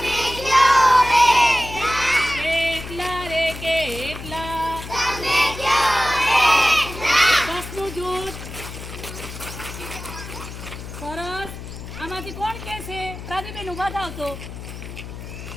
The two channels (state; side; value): noise; left; hum, 11 dB below the sound